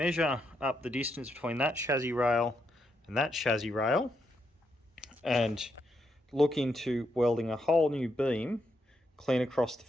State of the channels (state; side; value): normal; both; correlation 0.80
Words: up the distance between that chassis rail and that chassis rail and look into welding a whole new beam clean across the